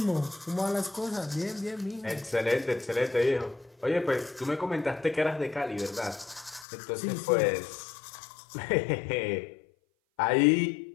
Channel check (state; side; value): drops out; right; at 6.7 s